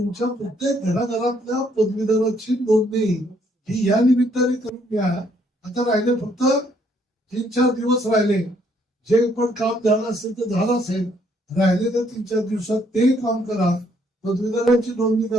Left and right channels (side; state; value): both; normal; correlation 0.68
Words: प्रत्येक घराघरातल्या पदवीधराची नोंदणी ही या निमित्ताने करून घ्या. आता राहिले फक्त 3-4 दिवस राहिले. जे पण काम झालं असेल तर झालं असेल, राहिलेल्या 3-4 दिवसात ते काम करा, पदवीधरांची नोंदणी